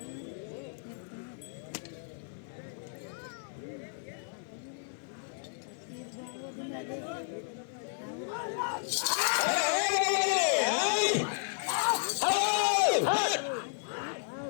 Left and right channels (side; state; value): right; silent; digital silence